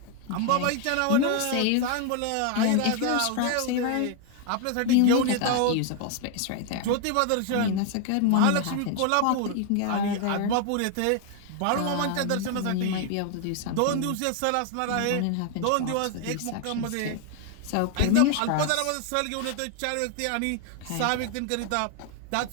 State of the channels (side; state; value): both; different; correlation 0.00